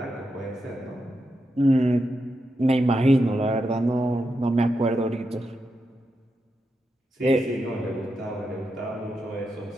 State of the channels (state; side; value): normal; both; correlation 0.86